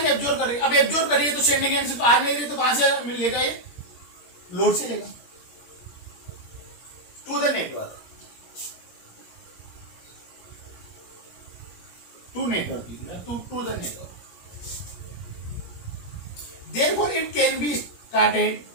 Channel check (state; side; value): late; right; 17 ms